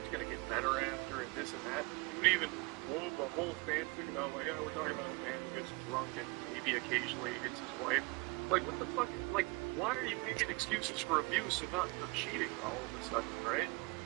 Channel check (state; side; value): quieter; left; 27.7 dB